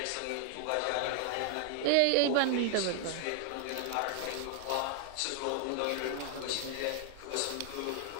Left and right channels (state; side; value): different; both; correlation 0.00